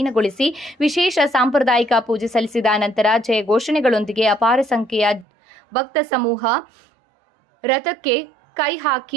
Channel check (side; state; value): left; drops out; at 5.2 s